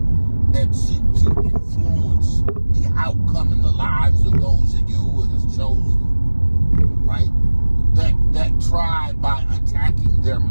that seek to influence the outcome in the lives of those that Yahuwah has chosen, right? That try by attacking their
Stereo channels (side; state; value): both; inverted; correlation -1.00